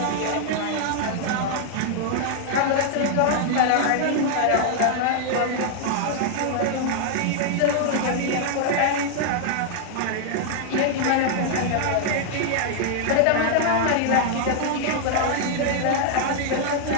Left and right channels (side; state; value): both; different; correlation 0.00